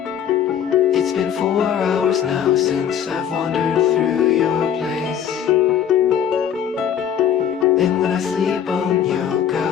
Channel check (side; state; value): right; quieter; 8.9 dB